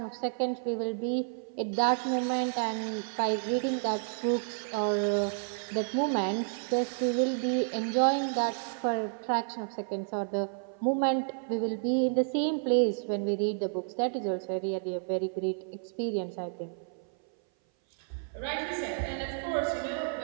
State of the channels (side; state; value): left; silent; 57 dB below the other